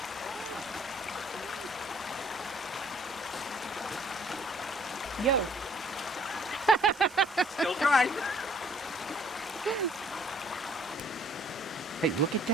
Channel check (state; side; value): normal; both; correlation 0.60